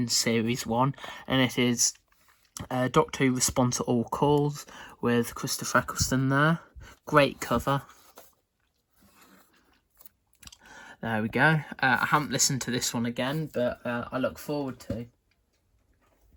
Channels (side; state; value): both; identical; correlation 1.00